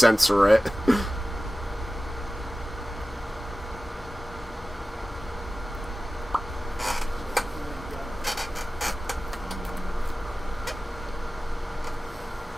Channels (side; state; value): both; normal; correlation 0.96